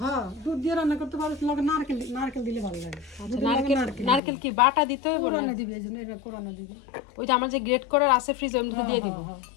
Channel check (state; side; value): drops out; right; at 4.2 s